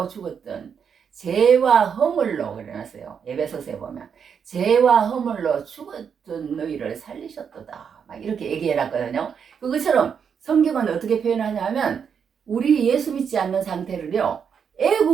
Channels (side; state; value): left; quieter; 7.0 dB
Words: 죽었던 죄와 허물로 그래놨어요. 에베소서에 보면 죄와 허물로 죽었던 너희를 살리셨도다. 막 이렇게 얘기해놨거든요. 그것처럼 성경은 어떻게 표현하냐면 우리 예수 믿지 않는 상태를요,